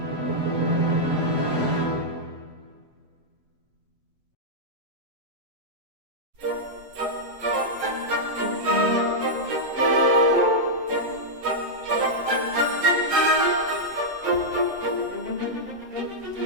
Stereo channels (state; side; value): late; left; 7.9 ms